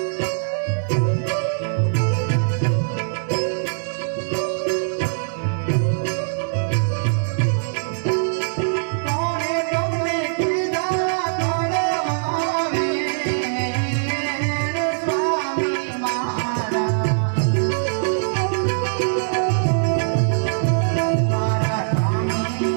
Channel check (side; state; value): left; silent; digital silence